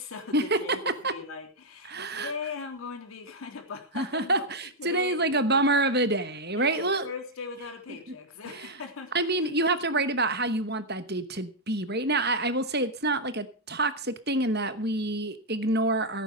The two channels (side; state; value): both; normal; correlation -0.01